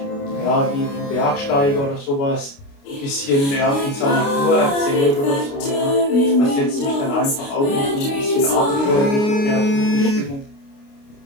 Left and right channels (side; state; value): right; late; 29 ms